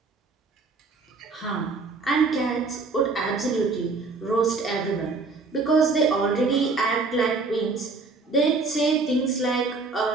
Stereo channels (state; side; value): quieter; left; 4.0 dB